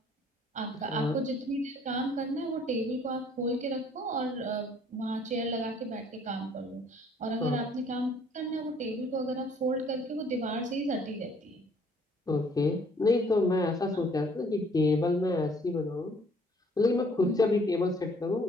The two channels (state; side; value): normal; both; correlation 0.60